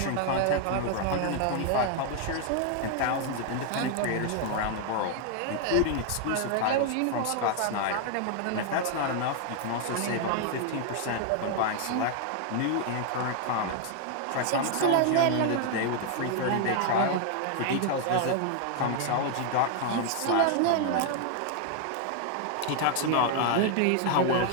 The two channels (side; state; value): both; different; correlation 0.00